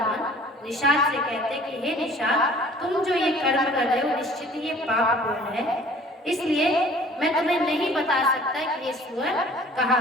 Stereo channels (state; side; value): normal; both; correlation 0.51